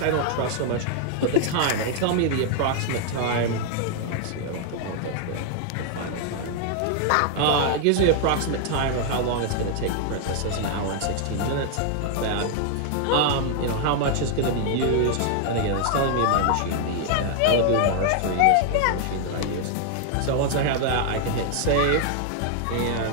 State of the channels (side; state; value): both; different; correlation 0.00